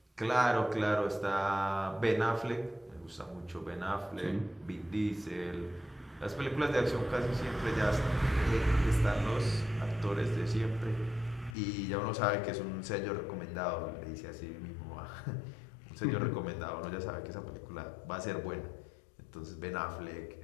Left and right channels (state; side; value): drops out; right; at 11.6 s